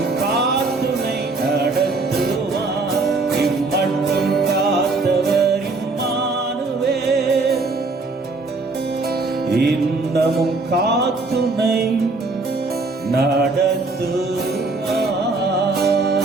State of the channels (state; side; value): quieter; left; 3.6 dB